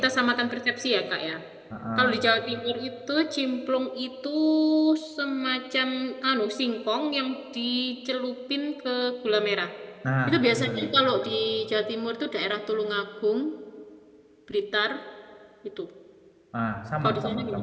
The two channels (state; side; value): identical; both; correlation 1.00